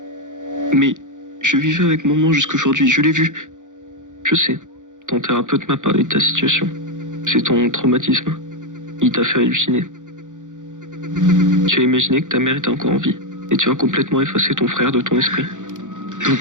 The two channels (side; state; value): left; late; 0.86 ms